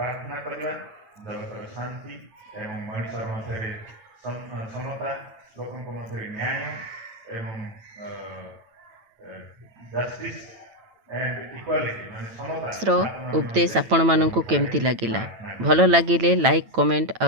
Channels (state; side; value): late; left; 9.0 ms